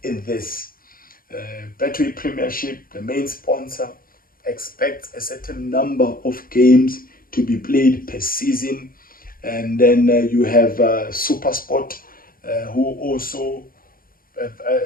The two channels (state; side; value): late; right; 0.42 ms